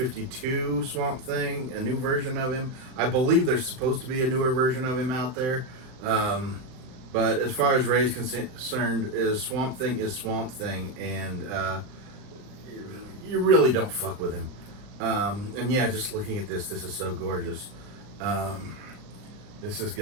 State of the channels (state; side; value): late; left; 39 ms